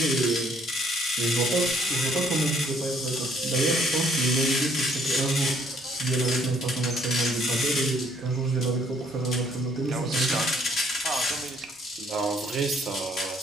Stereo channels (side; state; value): both; normal; correlation 0.64